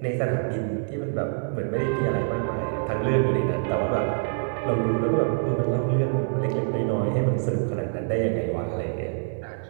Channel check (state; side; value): silent; left; digital silence